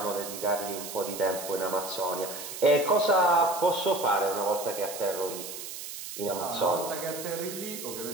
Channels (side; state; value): right; noise; hiss, 9 dB below the sound